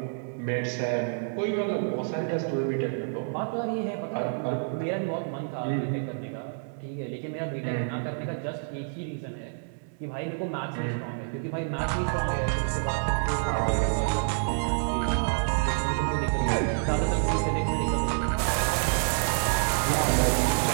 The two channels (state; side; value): silent; left; 59 dB below the other